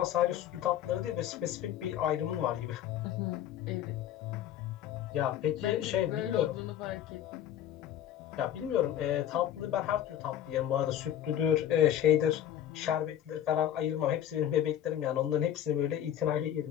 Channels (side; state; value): right; quieter; 10.9 dB